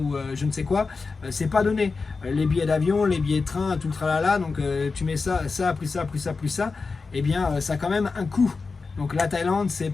je ne sais quoi, c'est pas donné. Les billets d'avion, les billets de train, tout le tralala, donc tu mets ça, plus ça, plus ça, et bien ça a quand même un coût. Donc la Thaïlande, c'est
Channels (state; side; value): quieter; right; 4.4 dB